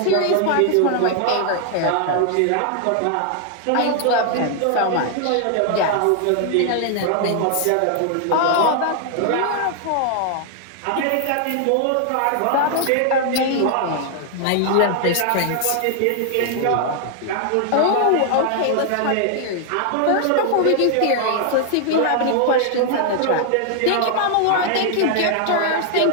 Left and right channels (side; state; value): both; different; correlation 0.00